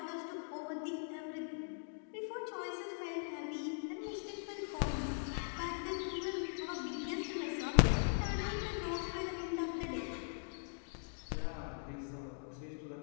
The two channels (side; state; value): right; silent; digital silence